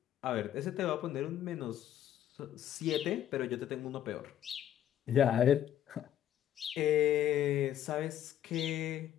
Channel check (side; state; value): right; quieter; 11.1 dB